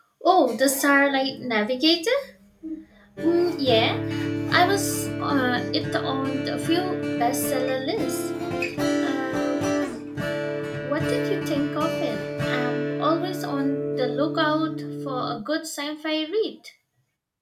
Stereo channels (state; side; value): identical; both; correlation 1.00